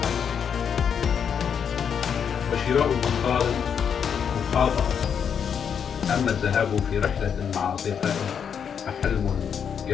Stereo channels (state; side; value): quieter; right; 7.5 dB